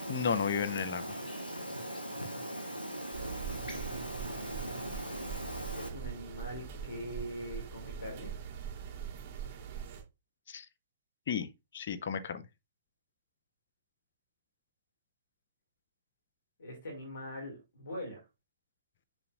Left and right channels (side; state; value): both; inverted; correlation -0.50